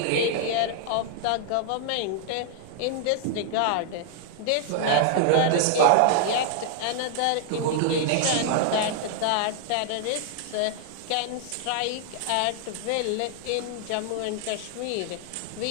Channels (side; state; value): both; different; correlation 0.00